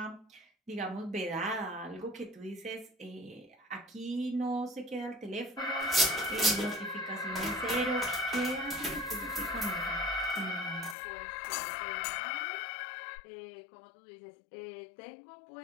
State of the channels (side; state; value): right; drops out; at 11.0 s